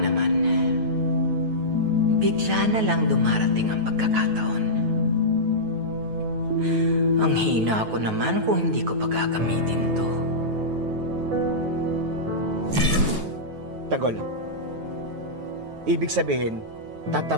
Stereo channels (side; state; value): left; late; 9.2 ms